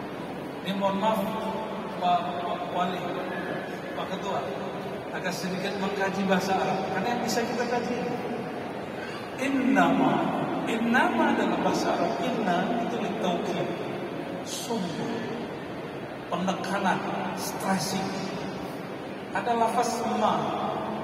Ini mohon maaf Pak Wali, Pak Ketua, agak sedikit mengkaji bahasa Arab, karena yang bisa kita kaji innama dalam bahasa Arab, inna itu litaukid, sungguh, penekanan, stressing. Ada lafaz ma,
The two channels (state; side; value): identical; both; correlation 1.00